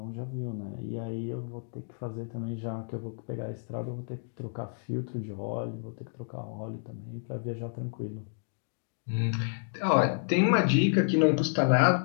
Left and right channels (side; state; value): right; silent; digital silence